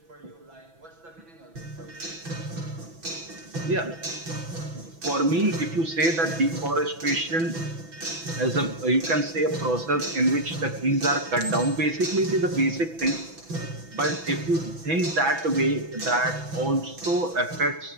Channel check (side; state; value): left; late; 6.0 ms